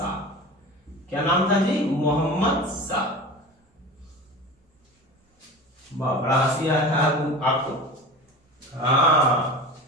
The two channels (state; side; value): normal; both; correlation 0.33